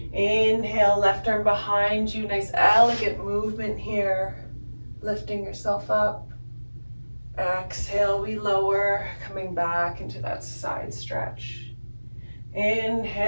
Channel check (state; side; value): inverted; both; correlation -1.00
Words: Inhale, left arm behind you. Nice elegant movement here. Lifting yourself up. Exhale, we lower, coming back into that side stretch.